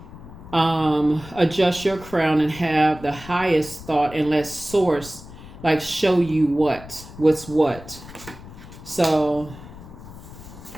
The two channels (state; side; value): noise; left; rumble, 16 dB below the sound